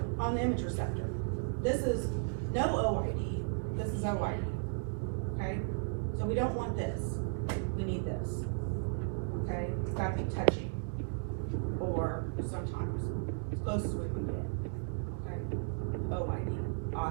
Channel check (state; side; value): silent; left; digital silence